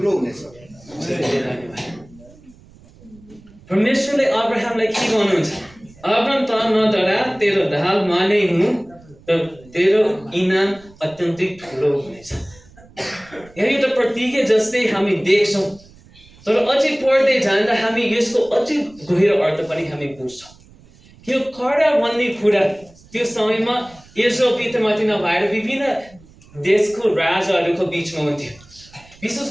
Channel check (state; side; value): noise; right; rumble, 25 dB below the sound